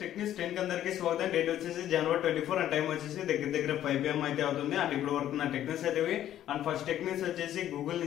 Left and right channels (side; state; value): right; quieter; 11.8 dB